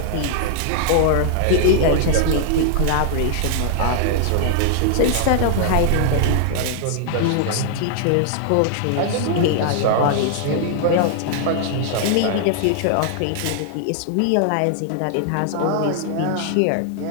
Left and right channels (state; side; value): different; both; correlation 0.00